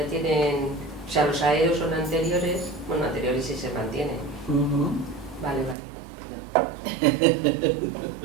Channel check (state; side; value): drops out; left; at 5.8 s